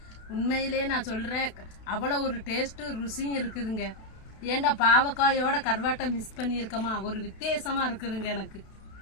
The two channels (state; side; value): late; right; 32 ms